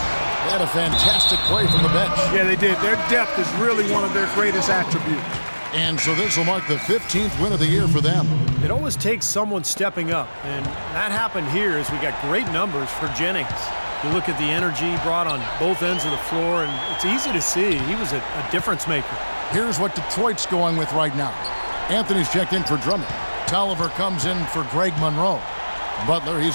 They had a fantastic play from the bench. Yeah, they did. Their depth is really one of their greatest attributes. And so this will mark the 15th win of the year for them. It always takes someone stepping up, and that happened here as we got great numbers for Jennings. You look at the energy he brought on both ends of the floor, and it's easy to see he was a difference maker. Here's what Detroit's going with right now. Anthony's checked in for Drummond. Tolliver comes in for Greg Monroe. Butler, he's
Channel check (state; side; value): inverted; both; correlation -1.00